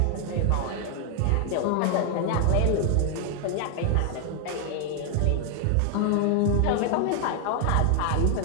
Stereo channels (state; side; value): different; both; correlation 0.00